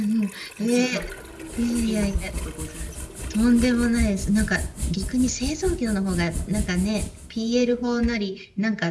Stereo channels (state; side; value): identical; both; correlation 1.00